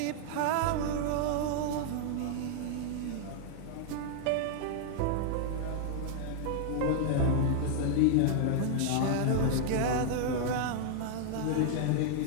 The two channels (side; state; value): both; different; correlation 0.00